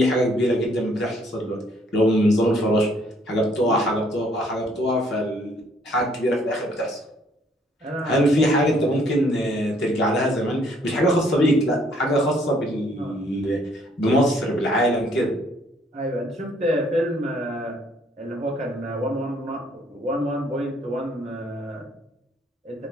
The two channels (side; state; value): both; normal; correlation 0.65